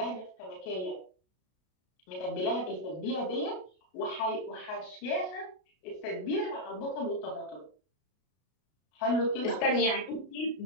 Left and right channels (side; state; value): right; late; 33 ms